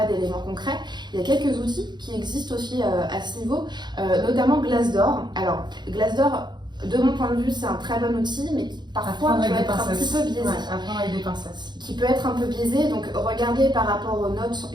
d'éléments concrets, il y a quelques outils qui existent aussi à ce niveau, notamment Glassdoor. Alors, Glassdoor, de mon point de vue, c'est un très bon outil, mais qui parfois peut être un petit peu biaisé. Apprendre avec des pincettes. Qui peut être un peu biaisé, donc regardez par rapport aux notes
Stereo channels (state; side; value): late; left; 0.21 ms